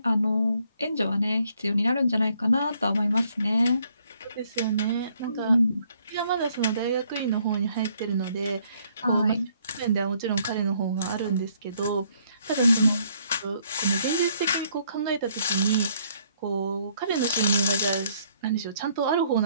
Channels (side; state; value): both; inverted; correlation -0.68